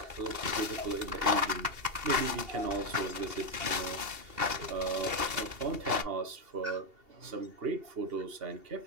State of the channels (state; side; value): late; left; 2.8 ms